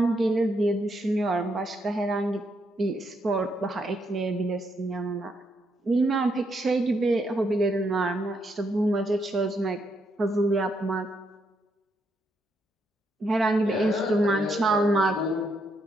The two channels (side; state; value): both; normal; correlation 0.77